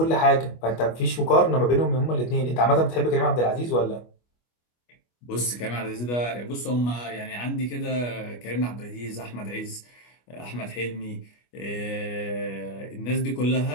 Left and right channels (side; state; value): right; late; 25 ms